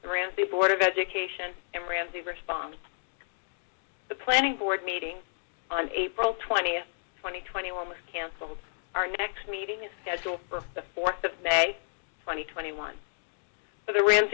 the Ramsey Board of Education, and Ramsey Response. The Planning Board meeting on April 20th, 2021 was canceled. Our next meeting is scheduled for the 4th of May, 2021. For the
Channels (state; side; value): silent; right; digital silence